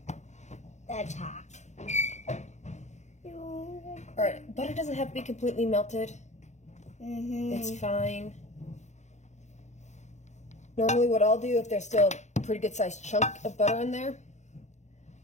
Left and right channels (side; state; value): right; late; 0.34 ms